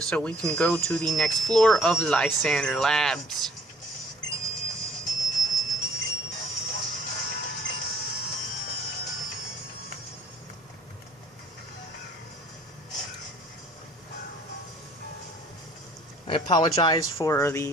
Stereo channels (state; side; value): normal; both; correlation 0.57